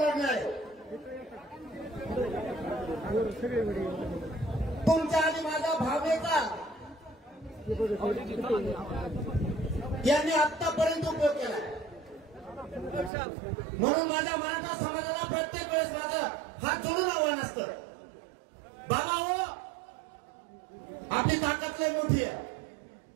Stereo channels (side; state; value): left; drops out; at 13.1 s